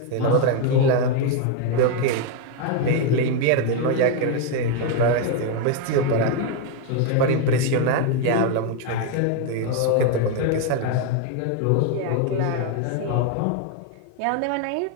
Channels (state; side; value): different; both; correlation 0.01